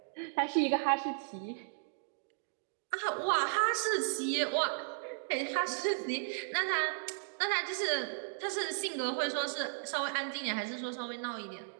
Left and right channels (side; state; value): left; silent; digital silence